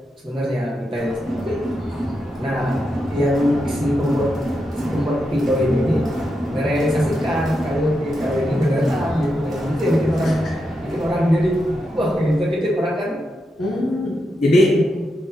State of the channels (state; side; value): normal; both; correlation 0.85